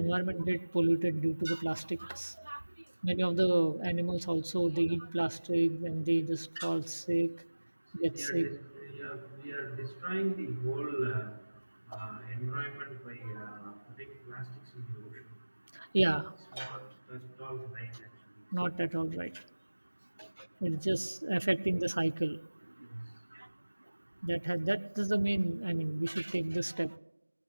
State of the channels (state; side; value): inverted; both; correlation -1.00